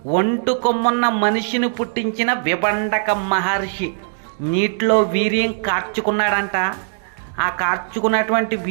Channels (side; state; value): left; silent; digital silence